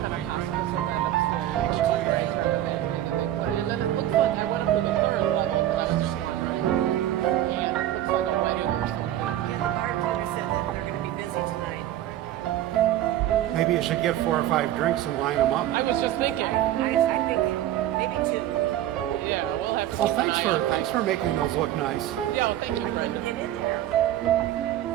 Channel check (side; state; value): left; quieter; 12.8 dB